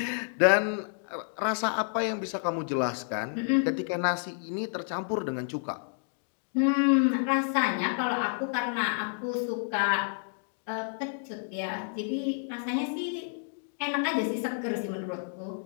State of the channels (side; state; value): right; silent; digital silence